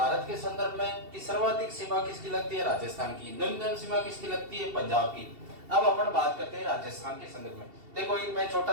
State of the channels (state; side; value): late; left; 2.7 ms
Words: के संदर्भ में कि सर्वाधिक सीमा किसकी लगती है? राजस्थान की। न्यूनतम सीमा किसकी लगती है? पंजाब की। अब अपन बात करते हैं राजस्थान के संदर्भ में। देखो एक मैं